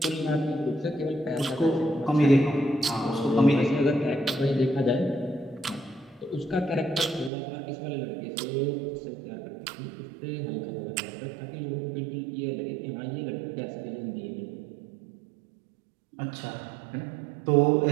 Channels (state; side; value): drops out; left; at 7.3 s